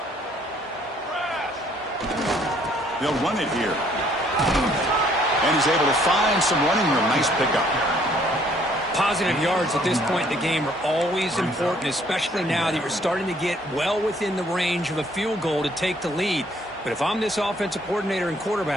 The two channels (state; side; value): normal; both; correlation 0.63